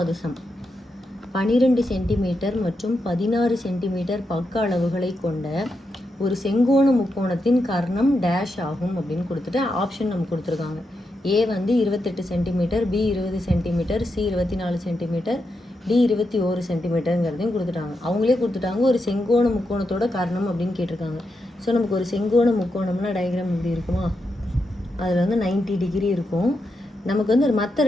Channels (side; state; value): both; normal; correlation 0.85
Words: சம். 12 சென்டிமீட்டர் மற்றும் 16 சென்டிமீட்டர் பக்க அளவுகளை கொண்ட ஒரு செங்கோண முக்கோணத்தின் கர்ணம் டேஷ் ஆகும் அப்படின்னு கொடுத்துட்டு ஆப்ஷன் நமக்கு கொடுத்துருக்காங்க. ஏ வந்து 28 centimetre, B 20 centimetre, C 24 centimetre, D 21 சென்டிமீட்டருங்கிறதையும் கொடுத்துட்டாங்க. அவங்களே கொடுத்துட்டாங்க ஒரு செங்கோண முக்கோணத்தோட கர்ணம் அப்படின்னு கேட்டிருக்காங்க. ஸோ நமக்கு ஒரு செங்கோண முக்கோணம்னா டயக்ராம் இப்படி இருக்குமா, அதில் வந்து 90 டிகிரி இருக்கும். நமக்கு வந்து மற்ற